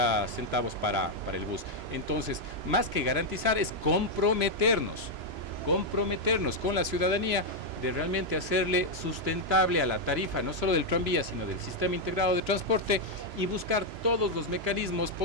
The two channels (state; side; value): late; left; 3.0 ms